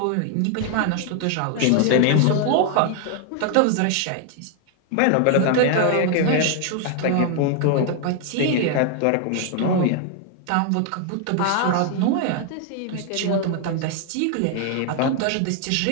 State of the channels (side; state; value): both; different; correlation 0.00